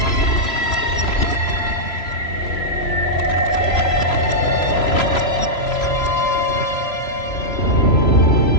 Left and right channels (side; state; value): right; late; 3.0 ms